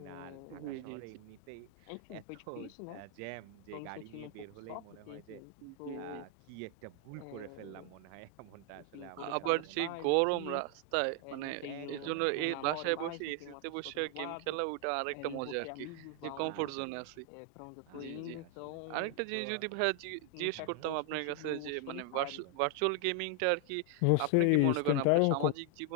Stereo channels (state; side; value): different; both; correlation 0.00